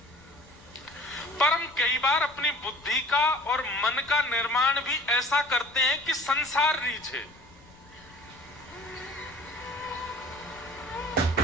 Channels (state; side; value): noise; left; rumble, 25 dB below the sound